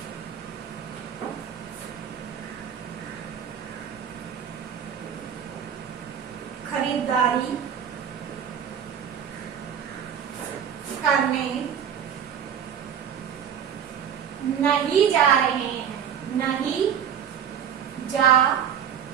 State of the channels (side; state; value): left; quieter; 8.4 dB